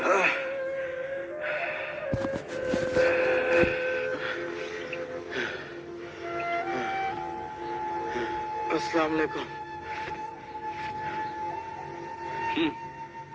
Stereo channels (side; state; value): both; identical; correlation 1.00